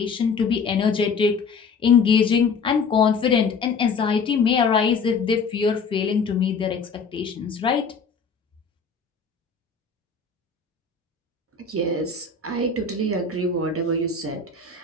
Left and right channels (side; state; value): right; quieter; 5.0 dB